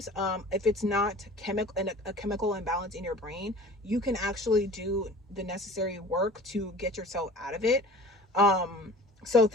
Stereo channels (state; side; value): normal; both; correlation 0.43